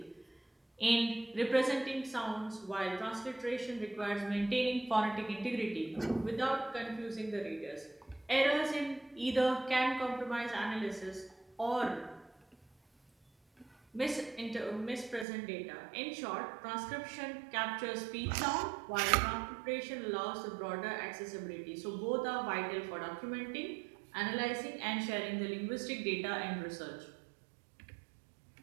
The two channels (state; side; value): drops out; left; at 15.2 s